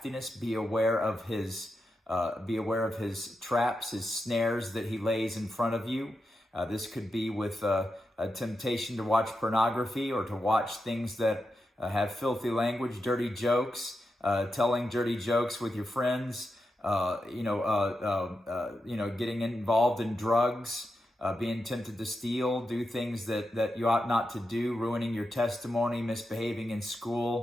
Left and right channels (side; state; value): both; normal; correlation 0.88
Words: Be aware of his traps, his snares that he lays in front of you. This could be with a temptation to watch pornography, or to watch things that have filthy language, dirty jokes, telling dirty jokes with your friends, getting involved in drugs, being tempted to steal, do things that you ought not to do, ruining your testimony, misbehaving in